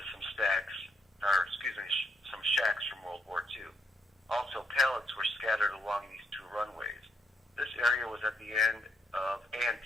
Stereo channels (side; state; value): both; normal; correlation 0.76